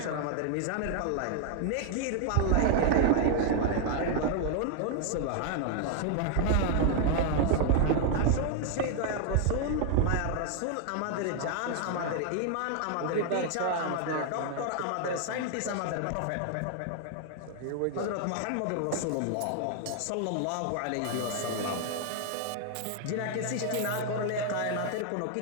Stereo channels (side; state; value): both; different; correlation 0.00